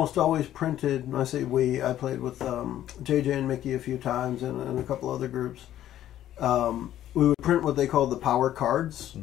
always printed, and I say we, I played with JJ and Mickey a few times and a couple other groups. We would print what they called the power cards,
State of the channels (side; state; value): right; quieter; 12.2 dB